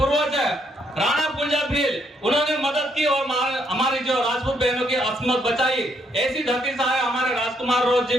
है राणा पुंजा भील, उन्होंने मदद की और हमारी जो राजपूत बहनों की अस्मत बचाई। ऐसी धरती से आए हमारे राजकुमार रोज जी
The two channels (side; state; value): both; normal; correlation 0.73